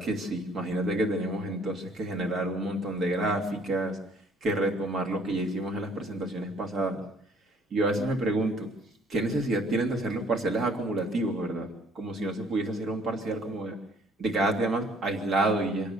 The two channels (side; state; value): both; normal; correlation 0.60